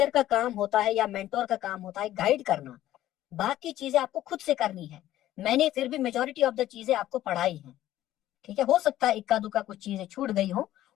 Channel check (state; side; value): quieter; right; 13.7 dB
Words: का काम होता है या मेंटोर का काम होता है गाइड करना, बाकी चीजें आपको खुद से करनी है। मैंने फिर भी मेजॉरिटी ऑफ द चीजें आपको पढ़ाई हैं, ठीक है, हो सकता है इक्का दुक्का कुछ चीजें छूट गई हो,